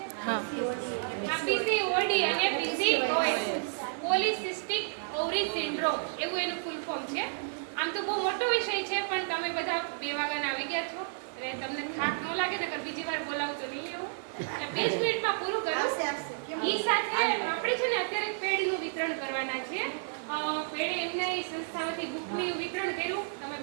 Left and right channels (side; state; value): left; silent; digital silence